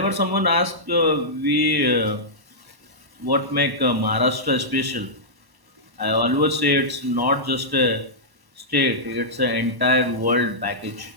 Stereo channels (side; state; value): left; late; 1.1 ms